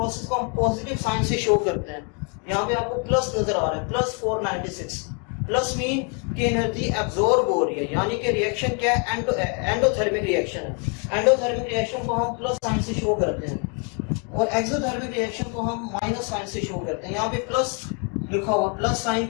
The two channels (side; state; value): right; quieter; 37.8 dB